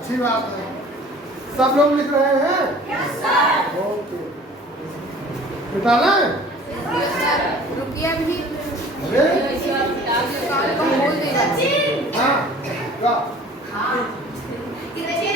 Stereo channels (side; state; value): both; normal; correlation 0.47